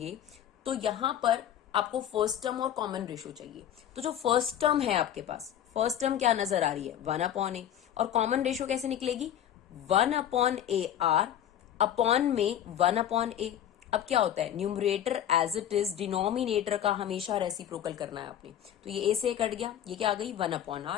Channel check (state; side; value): quieter; right; 10.4 dB